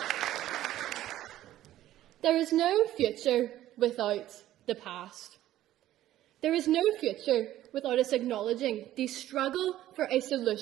There is no future without the past. There is no future without us acknowledging the struggle for a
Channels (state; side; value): quieter; left; 13.6 dB